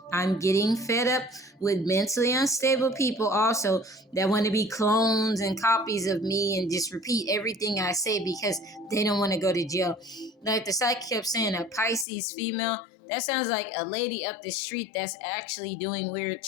I'm getting fed up with mentally unstable people also that want to be clones and copies of me and just repeat everything I say because they don't want to go to jail. Like the psychic kept saying, a Pisces female. That sounds like a lady up the street that's actually doing weird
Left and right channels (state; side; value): drops out; right; at 12.1 s